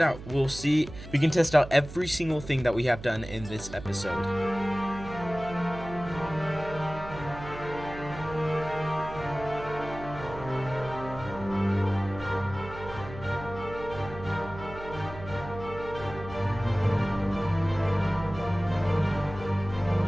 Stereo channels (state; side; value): noise; right; hum, 13 dB below the sound